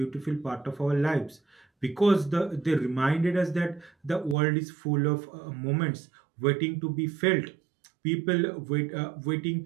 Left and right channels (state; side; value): drops out; left; at 4.4 s